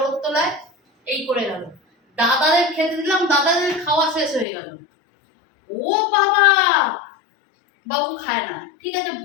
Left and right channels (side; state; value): right; drops out; at 4.5 s